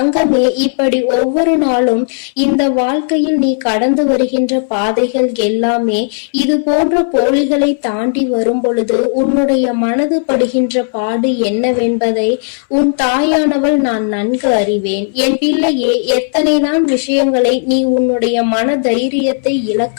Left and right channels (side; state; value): right; silent; 61 dB below the other